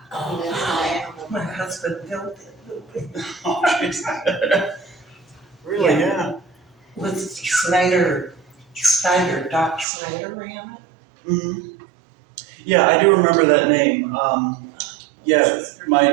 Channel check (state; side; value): drops out; left; at 9.9 s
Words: My husband built it. Oh, jeez. Really, yeah. With Doc Snyder ran it. Mm-hmm. Yeah, I do remember that name. Yeah, my